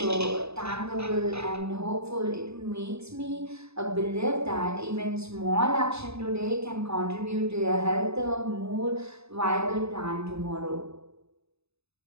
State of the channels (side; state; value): left; late; 0.79 ms